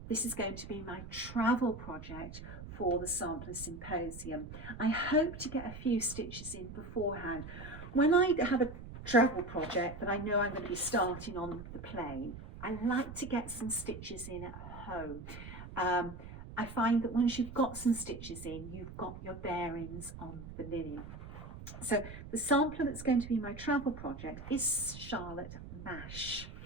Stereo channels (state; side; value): noise; right; rumble, 12 dB below the sound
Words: This is going to be my travel project for the Sampler Symposium. I hope to get a few stitches in beforehand. When I have a travel project that I know I'm going to be starting on the plane, I like to get some stitches in at home. I find that once you've got some stitches in, you've got your bearings on the linen. So the sampler that's going to be my travel project is Charlotte Mash,